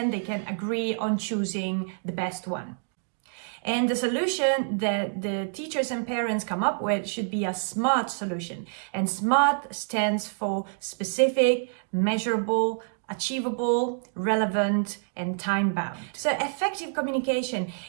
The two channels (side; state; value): left; silent; digital silence